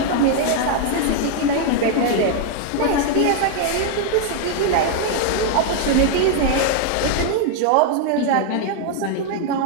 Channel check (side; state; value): both; different; correlation 0.00